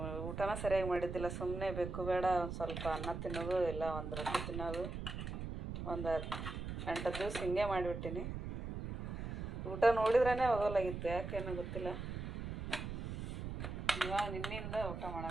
ಊಟನ ಸರಿಯಾಗಿ ಮಾಡಿದ್ದಿಲ್ಲ. ಸುಮ್ಮನೆ ಬೇಕು ಬೇಡ ಒಂದು ಸ್ವಲ್ಪ ಅನ್ನ ತಿನ್ನೋದು, ಇಲ್ಲ ಒಂದು ರೊಟ್ಟಿ ತಿನ್ನೋದು. ಒಂದು 8 ದಿವ್ಸ ಹಿಂಗೆ ಮಾಡಿಬಿಟ್ಟಿನಿ. ಊಟ ನೋಡಿದ್ರೇ ಹೋಗಲ್ಲಾಗಿತ್ತು, ಯಾಕೇನೋ ಗೊತ್ತಿಲ್ಲ. ಇವಾಗ ನಿನ್ನಿಂದ ಊಟ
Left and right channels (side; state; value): right; noise; rumble, 5 dB below the sound